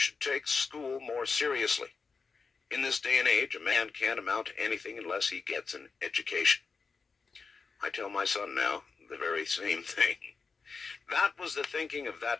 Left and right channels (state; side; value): quieter; right; 4.8 dB